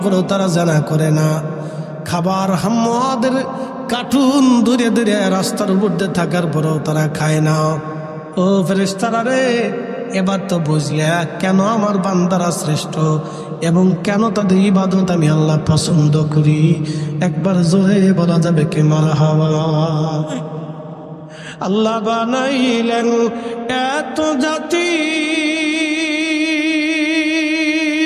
পরেও তারা জানা করে না। খাবার হাম্মাদের কার্টুন দূরে দূরে রাস্তার উপর দিয়ে থাকার পরেও তারা খায় না। ও ফেরেশতারা রে, এবার তো বুঝলে কেন আমার বান্দারা শ্রেষ্ঠ। এবং কেন তাদের ইবাদত আমি আল্লাহ পছন্দ করি, একবার জোরে বলা যাবে কে মারহাবা। আল্লাহ বানাইলেন এত জাতি,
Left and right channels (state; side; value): identical; both; correlation 1.00